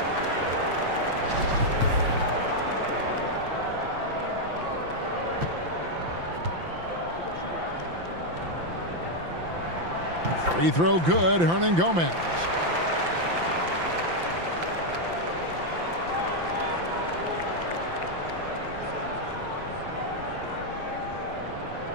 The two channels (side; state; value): left; late; 5.9 ms